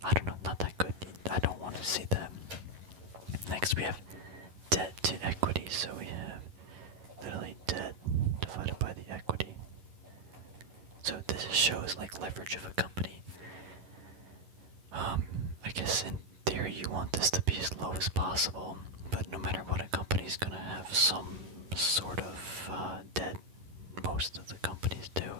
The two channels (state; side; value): late; left; 11 ms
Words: I don't know, not that good. I don't want to see that. Next, we have debt to equity. So we have literally debt divided by the equity. So this shows like leverage of a company. I guess in theory you want this to be as low as possible, but no matter what, a company's gonna have some sort of debt. Most of the companies do.